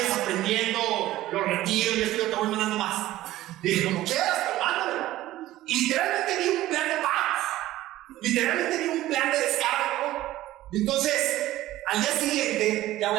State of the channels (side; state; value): left; quieter; 15.3 dB